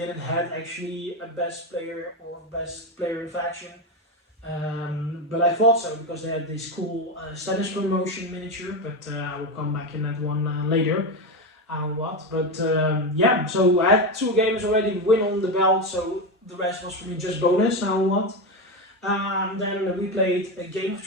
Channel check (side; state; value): both; normal; correlation 0.15